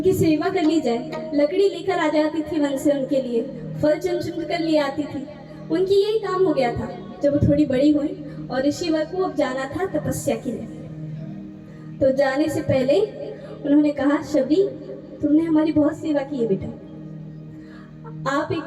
सेवा कर ली जाए। लकड़ी लेकर आ जाती थी वन से उनके लिए, फल चुन कर ले आती थी। उनकी यही काम हो गया था। जब वो थोड़ी बड़ी हुई और ऋषिवर को अब जाना था तपस्या के लिए, तो जाने से पहले उन्होंने कहा, शबरी तुमने हमारी बहुत सेवा की है बेटा, आप एक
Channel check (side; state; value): both; identical; correlation 1.00